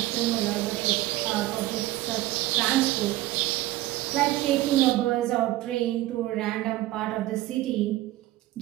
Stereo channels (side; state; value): left; quieter; 16.4 dB